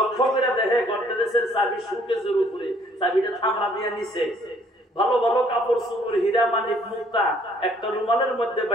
করে দেখে গর্দনের চাবি সুকেজের উপরে, চাবিটা থামড়া দিয়ে নিচে। ভালো ভালো কাপড় চোপড়, হীরা মানিক মুক্তা একটা রুমালের মধ্যে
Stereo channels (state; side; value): normal; both; correlation 0.61